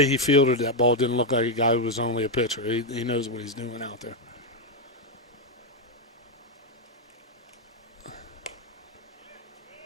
he fielded that ball didn't look like a guy who was only a pitcher. He knows what he's doing out there.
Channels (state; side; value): normal; both; correlation 0.02